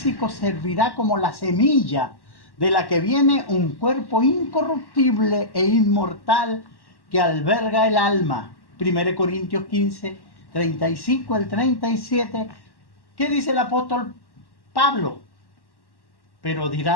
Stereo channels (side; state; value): right; late; 1.1 ms